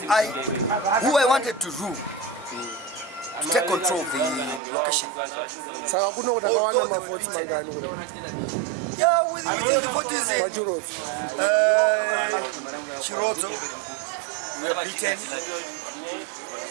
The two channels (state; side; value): drops out; left; at 4.6 s